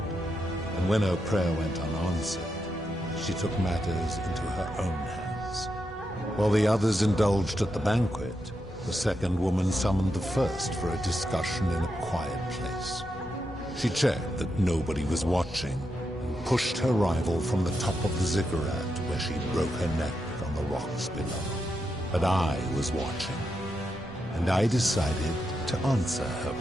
and when her prayer went unanswered, she took matters into her own hands. While the others indulged at the banquet, The second woman summoned the first for a discussion in a quiet place. She checked that nobody was watching and pushed her rival from the top of the ziggurat where she broke her neck on the rocks below. But I was watching, and I decided to answer her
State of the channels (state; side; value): normal; both; correlation 0.84